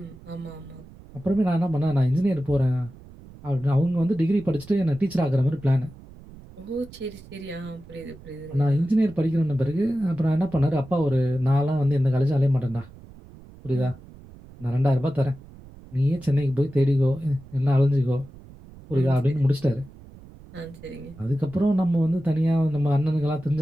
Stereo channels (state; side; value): noise; right; rumble, 20 dB below the sound